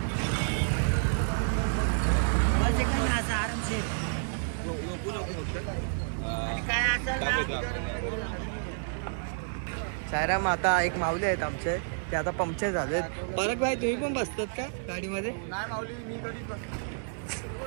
सायराम. आता एक माऊली आहेत आमचे. ते आता पंक्चर झालेत. परत भाई तुम्ही पण बसतात का गाडीमध्ये? नाही माऊली मी कधी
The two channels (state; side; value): silent; left; digital silence